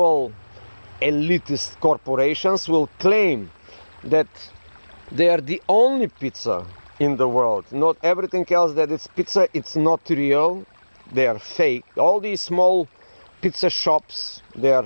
elitist corporations will claim that they are the only pizza in the world. Not everything else that it's pizza, it's not real. They are fake. All these small pizza shops, they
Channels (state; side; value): inverted; both; correlation -1.00